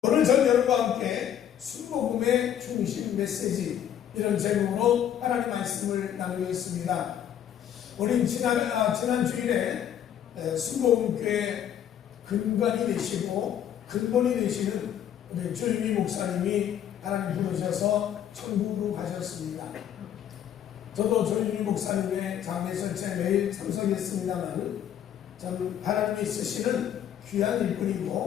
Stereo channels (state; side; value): quieter; right; 10.0 dB